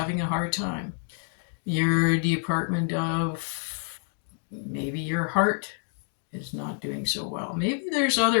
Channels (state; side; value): silent; right; 56 dB below the other